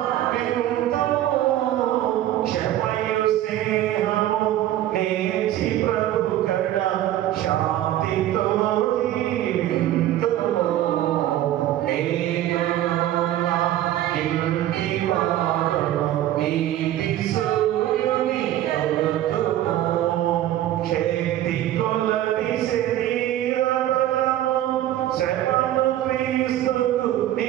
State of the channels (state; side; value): quieter; left; 13.1 dB